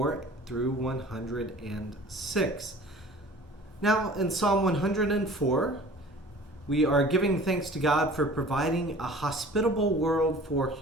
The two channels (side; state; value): both; normal; correlation 0.45